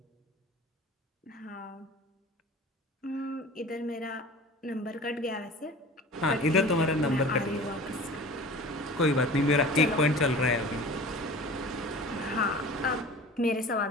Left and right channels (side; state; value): both; normal; correlation 0.39